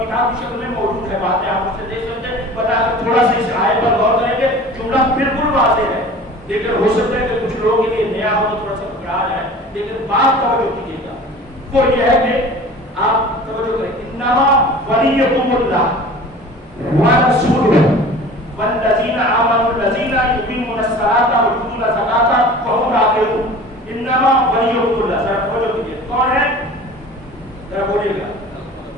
کتاب کی شکل میں موجود ہے، باتیں آپ اسے دیکھ سکتے ہیں. بتا کر تھوڑا سا اس آیت پر غور کریں گے. جملہ بالکل واضح ہے لیکن ہو سکتا ہے کہ کچھ لوگوں کے لیے نیا ہو تو تھوڑا سا گھبرا جائے، لیکن بات توجہ کیجیے گا. وہ یہ ہے کہ آپ توجہ کریں. انما ولیکم اللہ ورسولہ والذین آمنوا الذین یقیمون الصلاۃ ویؤتون الزکاۃ وهم راکعون. انما ولیکم اللہ. ذرا توجہ کیجیے، کون ہے؟ ذرا بولیے گا.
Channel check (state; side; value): normal; both; correlation 0.41